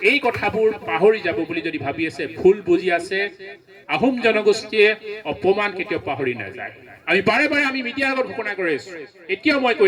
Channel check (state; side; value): identical; both; correlation 1.00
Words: এই কথাবোৰ পাহৰি যাব বুলি যদি ভাবি আছে ভুল বুজি আছে আহোম জনগোষ্ঠীয়ে অপমান কেতিয়াও পাহৰি নাযায় আমি বাৰে বাৰে আমি মিডিয়াৰ আগত ঘোষণা কৰি আছো এতিয়াও মই